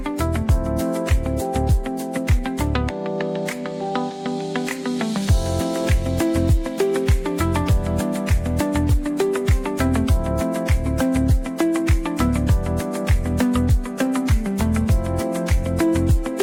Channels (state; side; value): identical; both; correlation 1.00